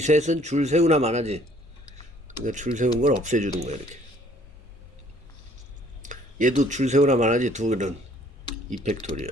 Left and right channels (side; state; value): both; normal; correlation 0.59